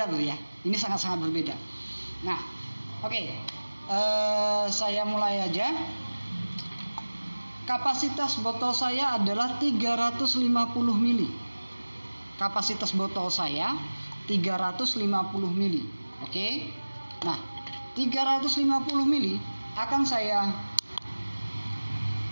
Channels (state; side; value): inverted; both; correlation -1.00